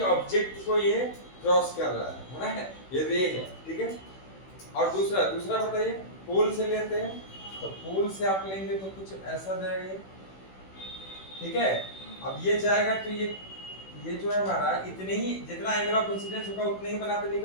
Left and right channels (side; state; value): right; late; 16 ms